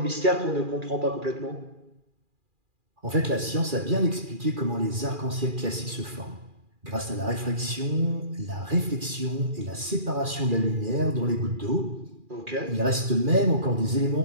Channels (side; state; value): left; late; 2.4 ms